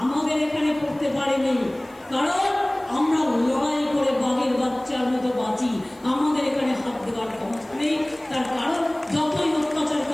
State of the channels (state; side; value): noise; left; hiss, 29 dB below the sound